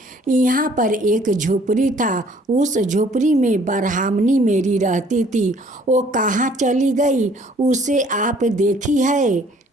यहाँ पर एक झोपड़ी था, उस झोपड़ी में ब्राह्मणी मेरी रहती थी, वो कहाँ चली गई, उसे आप देखी है?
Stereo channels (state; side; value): normal; both; correlation 0.58